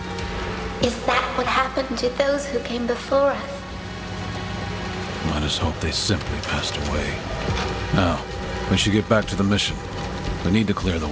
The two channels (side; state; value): both; identical; correlation 1.00